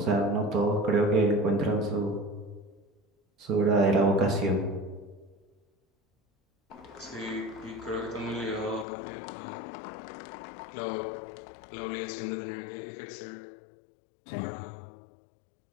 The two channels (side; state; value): right; drops out; at 8.8 s